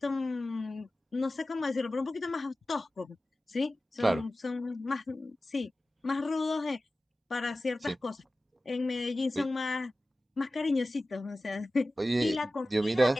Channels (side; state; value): both; normal; correlation 0.95